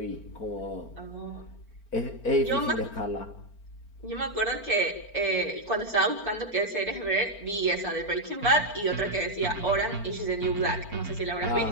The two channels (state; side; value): late; right; 4.4 ms